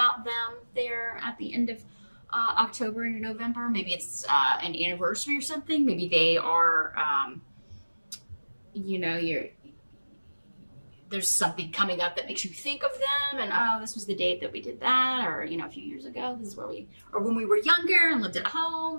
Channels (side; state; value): both; inverted; correlation -1.00